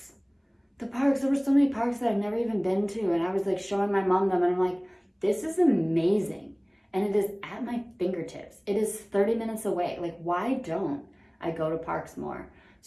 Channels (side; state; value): both; identical; correlation 1.00